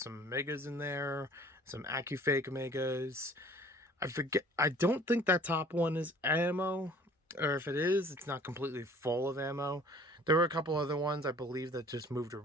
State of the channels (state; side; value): normal; both; correlation 0.52